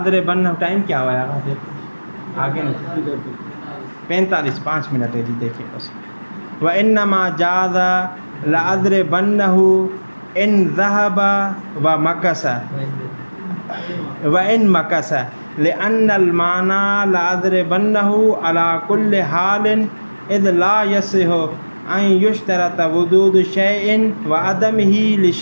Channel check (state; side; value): inverted; both; correlation -1.00